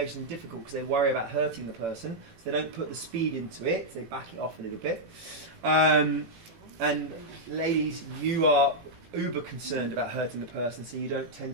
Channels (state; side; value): late; left; 18 ms